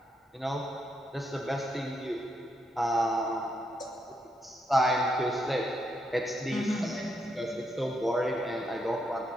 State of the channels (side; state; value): both; normal; correlation 0.79